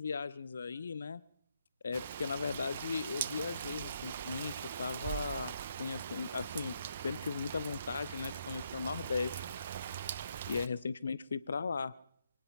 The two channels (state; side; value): inverted; both; correlation -0.77